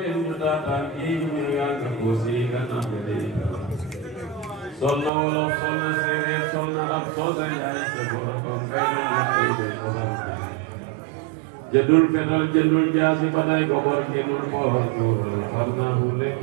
ñu daataan kii ñu yàgg ko si gannaaw bi day sol na wolof sol na séeréer sol na am sol na ñaari sa borom ko fay na koy de borom jëndul fetal jëndul jaasi ba day ko bor jëndul boor xam naa fu nekk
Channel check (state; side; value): drops out; left; at 5.1 s